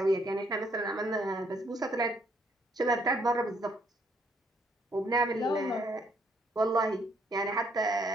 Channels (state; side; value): normal; both; correlation 0.69